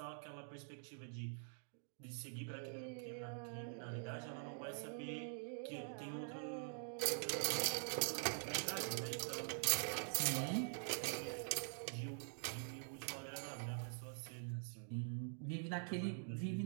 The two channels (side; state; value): left; silent; digital silence